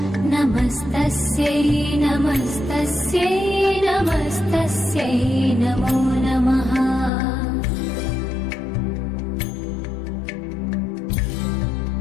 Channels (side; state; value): right; drops out; at 7.1 s